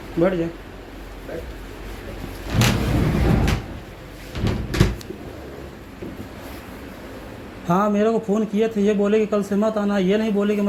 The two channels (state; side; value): identical; both; correlation 1.00